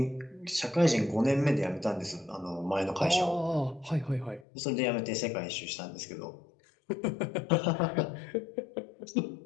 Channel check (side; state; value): right; drops out; at 4.5 s